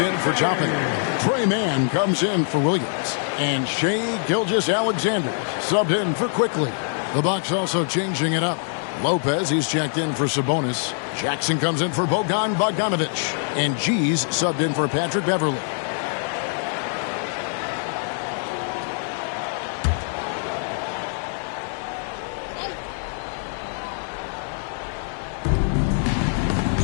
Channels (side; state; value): right; silent; 57 dB below the other